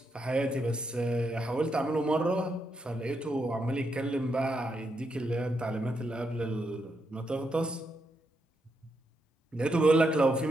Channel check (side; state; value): both; normal; correlation 0.81